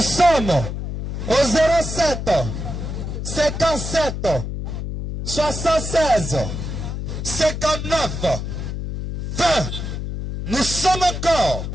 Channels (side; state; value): left; noise; hum, 5 dB below the sound